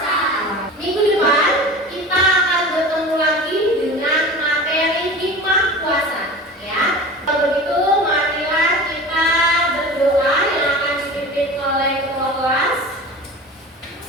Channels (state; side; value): normal; both; correlation 0.35